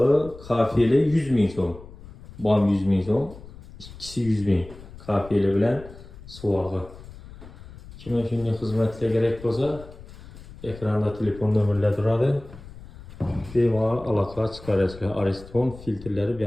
kafeli 100 ming so'm. Bam 100 ming so'm, ikkisi 100 ming. Kafeli bilan suvag'i. Kimga shunday xizmatlar kerak bo'lsa, ekranda telefon nomerlari turadi. Bemalol aloqa chiqarasizlar. Ariston filtrlari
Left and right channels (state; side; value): noise; left; rumble, 17 dB below the sound